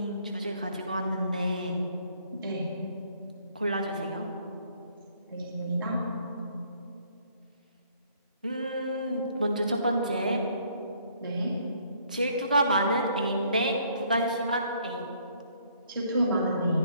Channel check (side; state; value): both; inverted; correlation -0.64